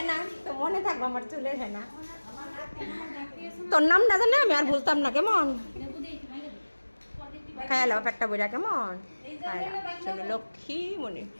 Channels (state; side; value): inverted; both; correlation -1.00